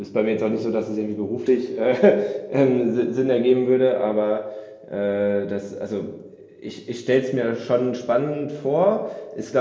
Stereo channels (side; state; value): both; identical; correlation 1.00